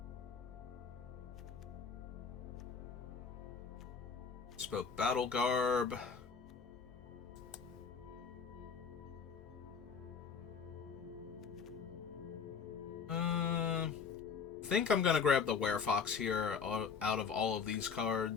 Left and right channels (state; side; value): quieter; right; 6.0 dB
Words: Spoke Battle Garb. I think I'm gonna grab the Werefox here out of all of these